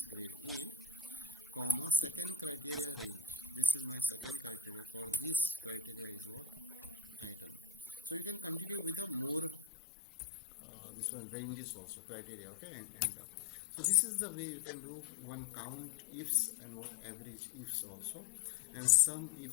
grade A, comma, second criteria range. This is my second criteria. For this criteria is what? Item. So you can continue with a more this one ranges also, criteria. Okay, and so this is the way you can do one count ifs and what average ifs also, and some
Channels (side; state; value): right; drops out; at 9.7 s